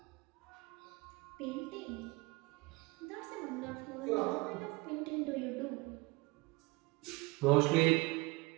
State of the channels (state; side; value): quieter; left; 24.2 dB